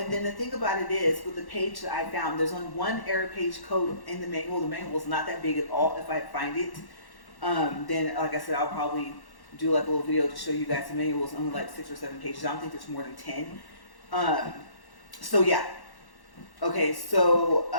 then the thing about it is, with the page that I found, there's only one error page code in the manual. The manual is not that big at all. If I find it, then, like I said, I'll probably do like a little video to show you guys. The manual is only like 6 or 7 pages. I don't think there's more than 10. So yeah. Okay, so,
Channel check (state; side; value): late; right; 1.1 ms